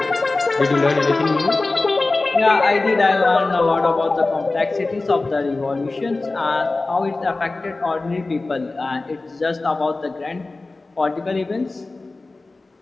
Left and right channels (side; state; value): right; quieter; 3.3 dB